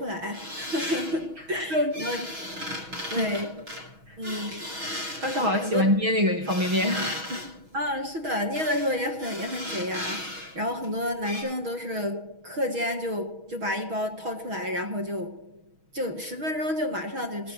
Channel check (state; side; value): late; left; 6.2 ms